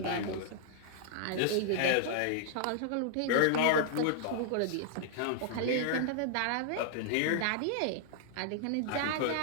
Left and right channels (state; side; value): different; both; correlation -0.01